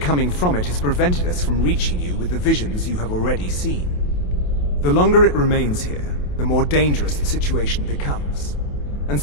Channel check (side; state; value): right; late; 28 ms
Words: from it has prevented us from reaching you with the visions you have already seen. The longer it remains here, the more dangerous the situation becomes. And